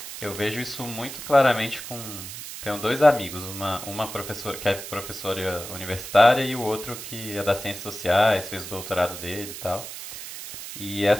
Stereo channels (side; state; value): right; noise; hiss, 10 dB below the sound